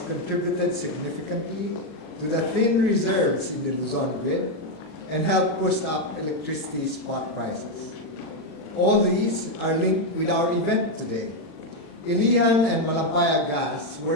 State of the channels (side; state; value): right; late; 40 ms